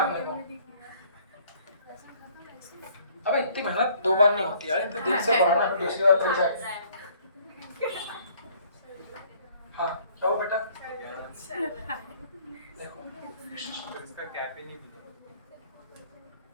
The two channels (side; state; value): both; inverted; correlation -0.59